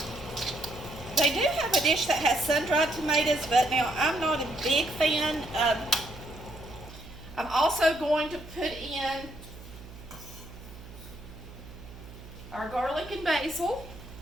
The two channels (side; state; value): right; noise; hum, 16 dB below the sound